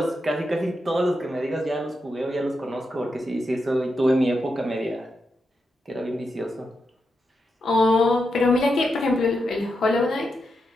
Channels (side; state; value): both; normal; correlation 0.86